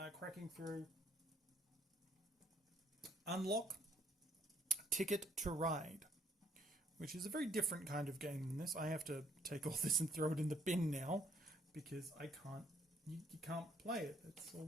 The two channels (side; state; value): both; normal; correlation 0.67